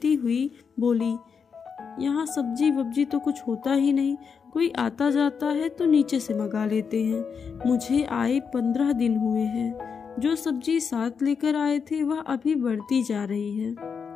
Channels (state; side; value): quieter; right; 6.1 dB